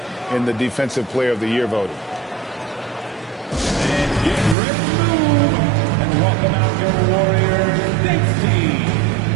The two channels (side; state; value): left; drops out; at 4.5 s